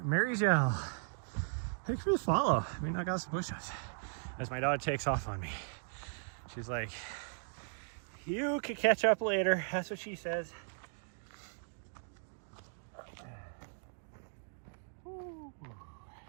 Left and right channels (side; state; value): left; silent; digital silence